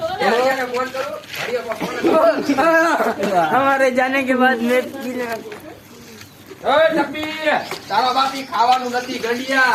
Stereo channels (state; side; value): identical; both; correlation 1.00